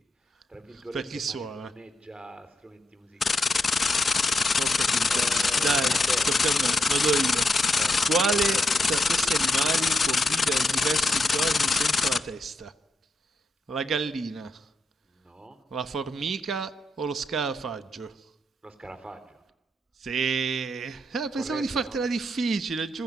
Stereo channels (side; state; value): both; normal; correlation 0.81